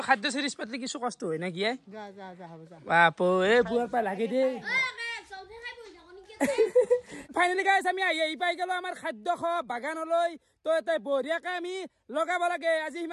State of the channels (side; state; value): both; identical; correlation 1.00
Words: খাদ্য সিরিজ পাতলি কিছু কষ্ট হয় না কি যা হ'ব যা বাপো এ বুয়াৰ পা লাগে দে ফাইনালি গাইস আমি এই পাই গেল আমাৰ খাদ্য খ বাগানলৈ তো এতে বঢ়িয়াকে আমি লগাব লাগে আজি